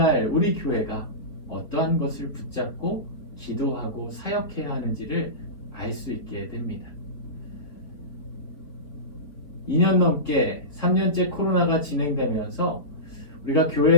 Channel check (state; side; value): late; right; 3.8 ms